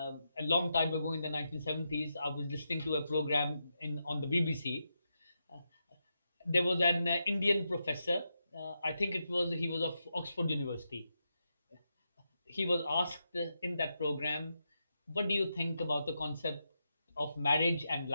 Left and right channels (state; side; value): inverted; both; correlation -0.85